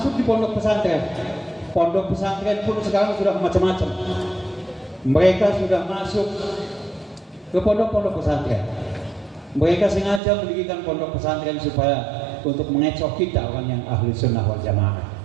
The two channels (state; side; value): drops out; left; at 10.2 s